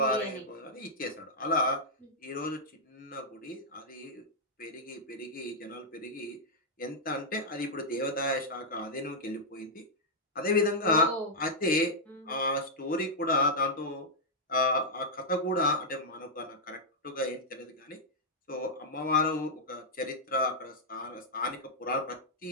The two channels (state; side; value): normal; both; correlation -0.06